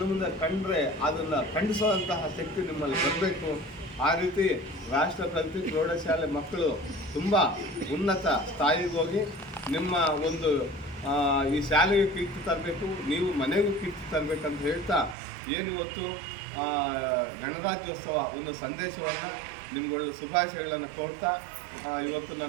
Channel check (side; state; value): left; drops out; at 15.2 s